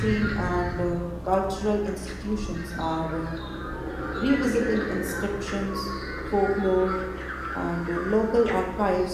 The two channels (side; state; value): both; identical; correlation 1.00